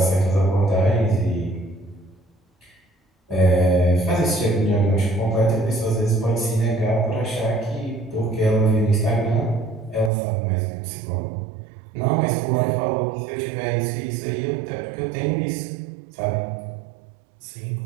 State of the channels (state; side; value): drops out; left; at 10.1 s